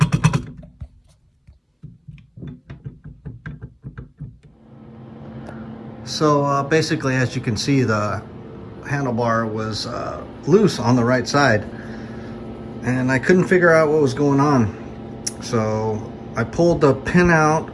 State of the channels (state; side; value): identical; both; correlation 1.00